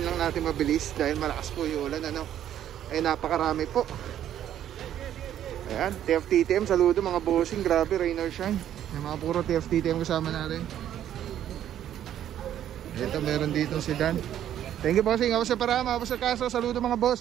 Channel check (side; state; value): left; quieter; 11.0 dB